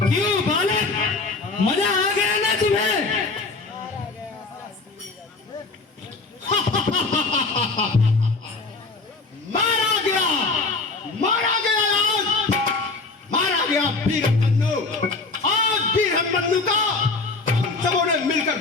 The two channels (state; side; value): quieter; right; 3.9 dB